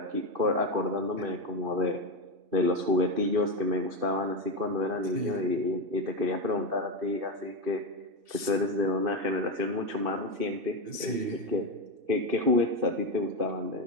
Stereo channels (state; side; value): late; left; 2.7 ms